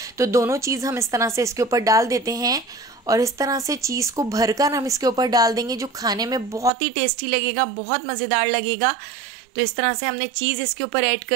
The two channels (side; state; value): left; drops out; at 6.7 s